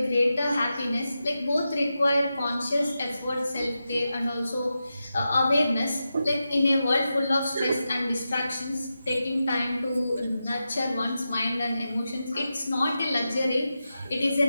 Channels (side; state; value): both; inverted; correlation -0.90